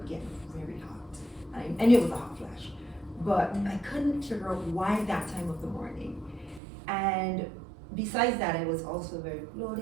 get very hot. I knew it was a hot flash, but I couldn't figure out why that time of the morning. And besides that, I was also very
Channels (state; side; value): drops out; left; at 6.6 s